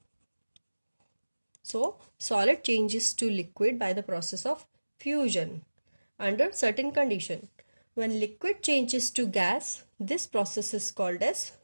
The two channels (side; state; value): both; inverted; correlation -1.00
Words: So solid changes to liquid by the process of fusion under certain condition. When liquid changes to gas, this process is called as